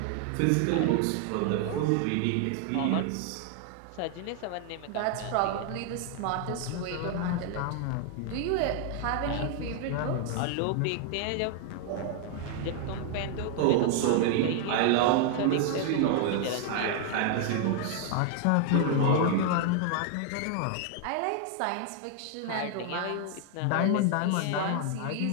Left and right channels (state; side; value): different; both; correlation 0.00